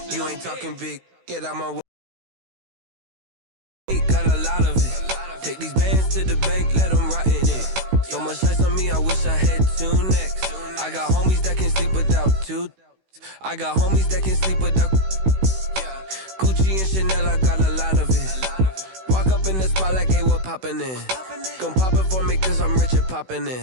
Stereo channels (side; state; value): left; late; 16 ms